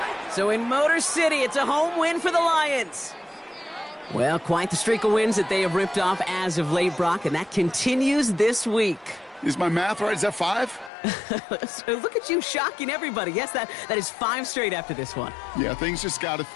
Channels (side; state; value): right; drops out; at 10.9 s